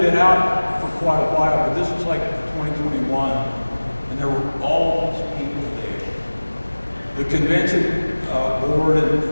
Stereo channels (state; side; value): inverted; both; correlation -1.00